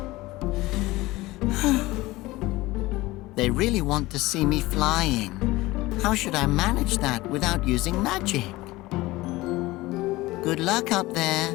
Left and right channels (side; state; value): right; quieter; 19.5 dB